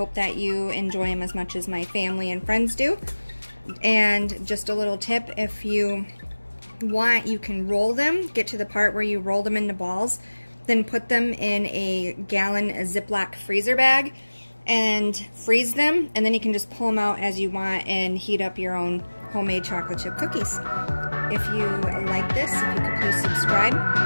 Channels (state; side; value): inverted; both; correlation -1.00